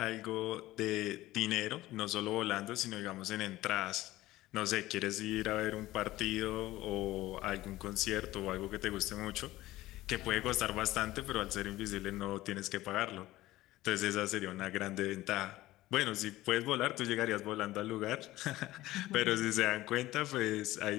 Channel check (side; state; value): right; quieter; 16.8 dB